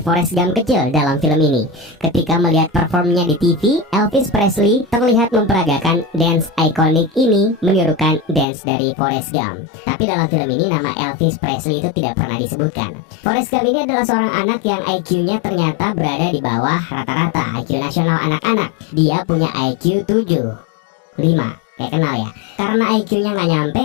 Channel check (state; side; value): drops out; right; at 8.5 s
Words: Gump kecil dalam film ini. Ketika melihat performnya di TV, Elvis Presley terlihat memperagakan dance ikonik ini menirukan dance dari Forrest Gump. Tapi dalam film ini nama Elvis Presley itu tidak pernah disebutkan. Forrest Gump ini adalah seorang anak yang IQ-nya ternyata berada di bawah rata-rata IQ nasional anak-anak. Dia punya IQ 7,5. Kayak kenal ya. Karena IQ-nya nggak nyampe,